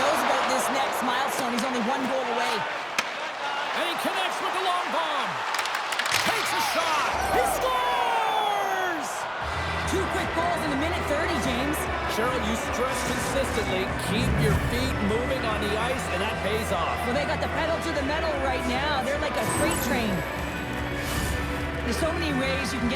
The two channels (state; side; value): identical; both; correlation 1.00